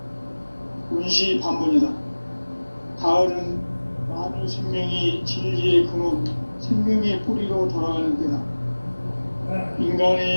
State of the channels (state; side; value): inverted; both; correlation -1.00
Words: 운시반본이다. 가을은 만유 생명이 진리의 근원, 생명의 뿌리로 돌아가는 때다.